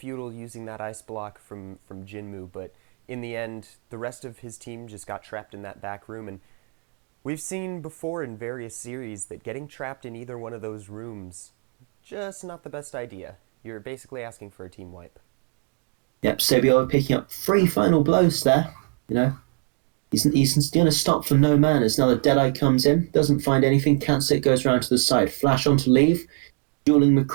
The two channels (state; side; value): quieter; left; 36.0 dB